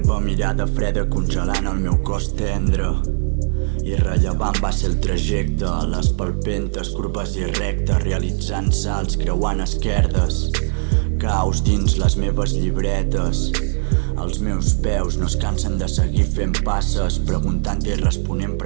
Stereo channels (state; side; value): silent; left; digital silence